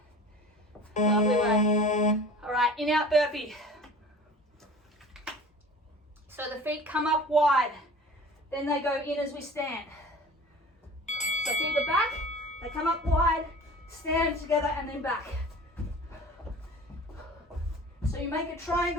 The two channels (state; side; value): normal; both; correlation 0.42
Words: Lovely work. All right, in-out burpee. So the feet come up wide, then they go in as we stand. So feet are back, they come up wide, stand together and then back. So you make a